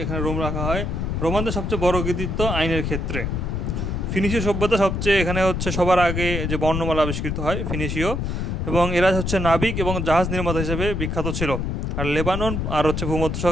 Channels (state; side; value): noise; left; rumble, 2 dB below the sound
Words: এখানে রোম রাখা হয়। রোমানদের সবচেয়ে বড় কৃতিত্ব আইনের ক্ষেত্রে। ফিনিশীয় সভ্যতা সবচেয়ে, এখানে হচ্ছে সবার আগে যে বর্ণমালা আবিষ্কৃত হয় ফিনিশীয়, এবং এরা হচ্ছে নাবিক এবং জাহাজ নির্মাতা হিসেবে বিখ্যাত ছিল। আর লেবানন আর হচ্ছে